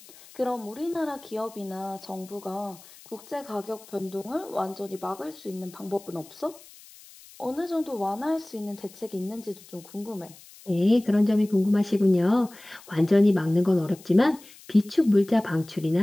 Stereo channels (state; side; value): noise; left; hiss, 22 dB below the sound